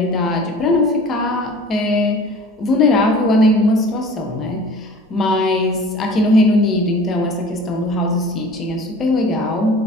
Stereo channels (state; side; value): normal; both; correlation 0.44